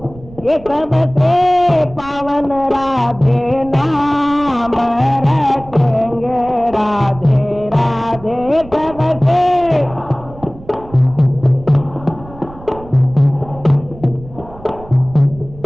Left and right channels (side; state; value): right; noise; rumble, 19 dB below the sound